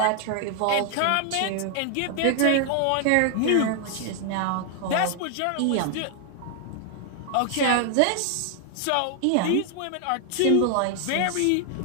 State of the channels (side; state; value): both; different; correlation 0.00